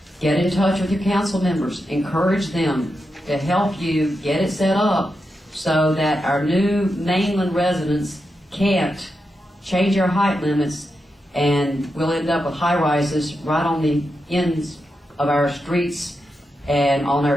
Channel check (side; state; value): both; normal; correlation 0.87